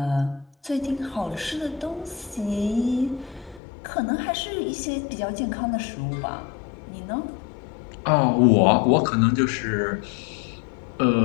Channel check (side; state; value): right; drops out; at 3.6 s